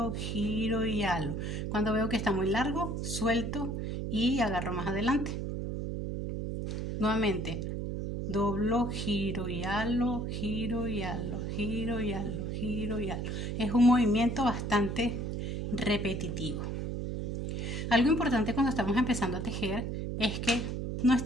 giro y halo. Cuando veo que está muy largo, suelto y agarro más adelante. Nuevamente doblo, giro y halo, giro y halo, giro y halo, giro y halo. Es un movimiento bastante repetitivo. Algo importante cuando estamos empezando a tejer es que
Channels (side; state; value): right; noise; hum, 3 dB below the sound